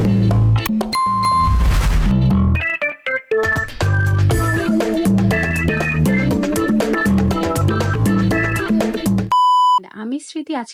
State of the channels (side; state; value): both; identical; correlation 1.00